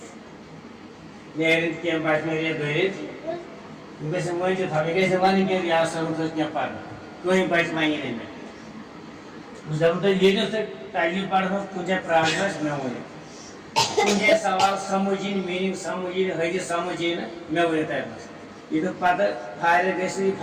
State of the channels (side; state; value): both; identical; correlation 1.00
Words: نیرن کیم بات میں یہ دریت گیسے مجھے تھا گیسے وانی کہ یا سمجھ کیا پڑھ کوئی بات مانی نہیں میں جب تو یہ جو سے تعلیم پڑھا تجھے پراگرس میں ہوئی تجھے سوال سمجھین میننگ سمجھین حدیث سمجھین میں ہوئی تھا بس یہ تو پتہ فائدہ گیسے